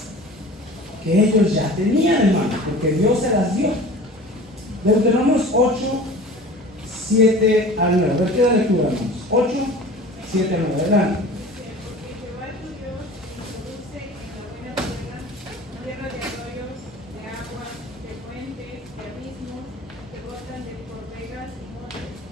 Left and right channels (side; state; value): both; normal; correlation 0.40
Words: que ellos ya tenían, hermanos, porque Dios se las dio. Deuteronomio 8, 7 al 9. A ver, ¿qué da lectura, hermanos? 8, 7 al 9. Adelante.